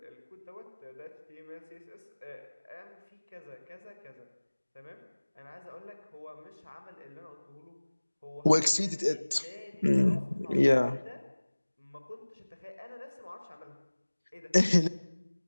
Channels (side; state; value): both; inverted; correlation -1.00